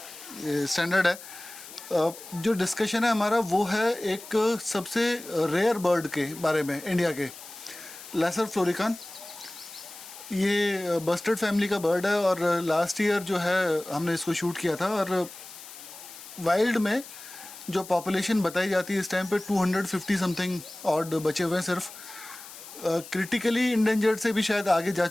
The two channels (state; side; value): noise; left; hiss, 15 dB below the sound